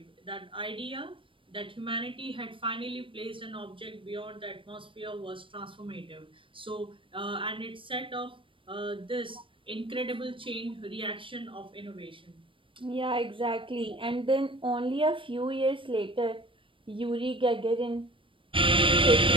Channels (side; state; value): left; late; 0.25 ms